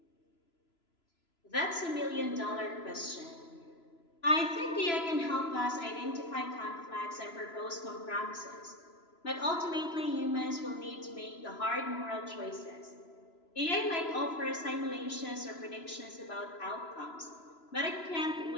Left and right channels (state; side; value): late; right; 3.0 ms